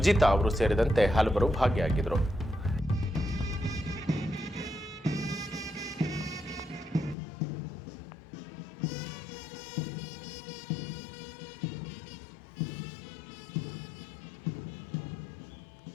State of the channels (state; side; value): drops out; right; at 7.2 s